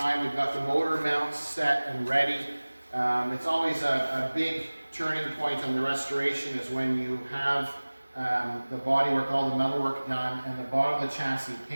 We've got the motor mounts set and ready. It's always a big turning point on the restoration is when you have the bodywork, all the metalwork done, and the bottom of the chassis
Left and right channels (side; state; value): both; inverted; correlation -1.00